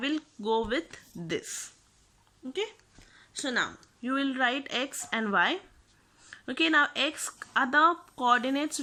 go with this. Okay, so now you will write x and y. Okay, now x are the coordinates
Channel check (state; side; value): identical; both; correlation 1.00